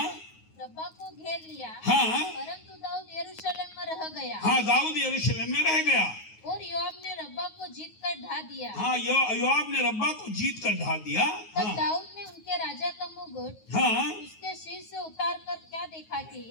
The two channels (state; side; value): late; right; 9.4 ms